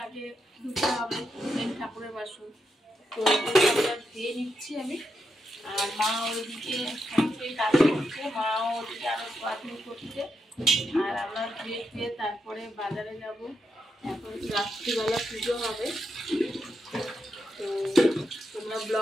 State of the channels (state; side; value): normal; both; correlation 0.84